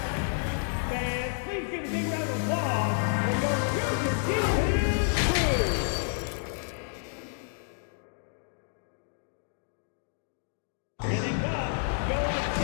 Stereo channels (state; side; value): silent; right; digital silence